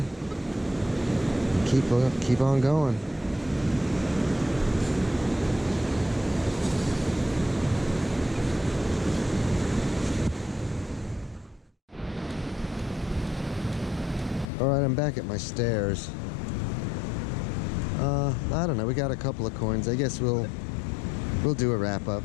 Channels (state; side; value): drops out; right; at 14.5 s